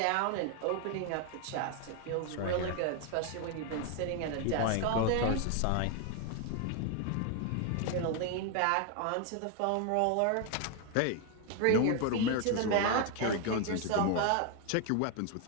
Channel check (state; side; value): different; both; correlation 0.01